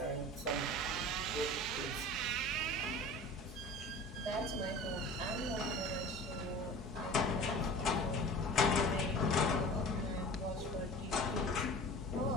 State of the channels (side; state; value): both; normal; correlation 0.39